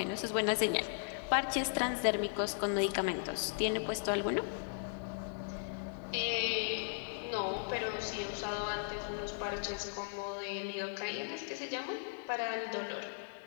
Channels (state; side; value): silent; right; 53 dB below the other